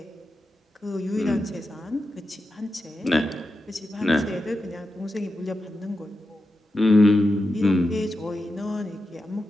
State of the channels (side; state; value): both; normal; correlation 0.89